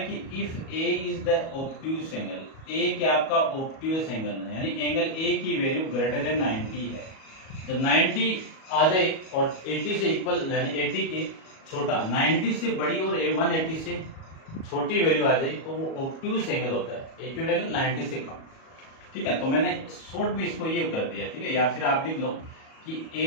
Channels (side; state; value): right; late; 37 ms